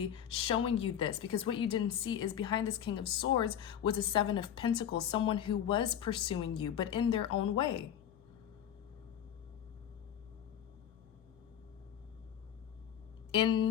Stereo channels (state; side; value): quieter; right; 9.6 dB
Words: showing you this, because what you didn't see is behind this King of Swords was a Seven of Pentacles, someone who was pursuing you, but in their own way.